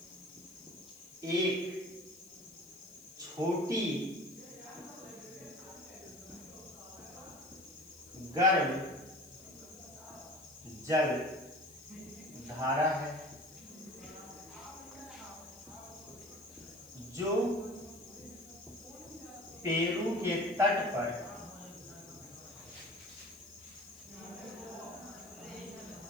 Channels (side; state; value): left; noise; hiss, 21 dB below the sound